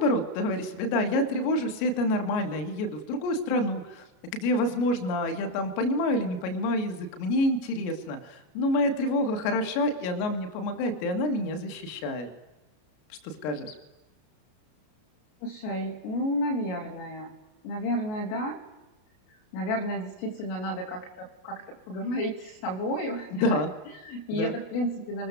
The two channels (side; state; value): right; late; 33 ms